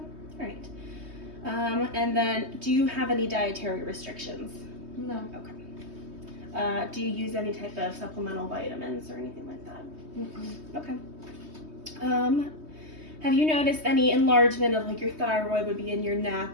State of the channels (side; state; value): left; late; 3.2 ms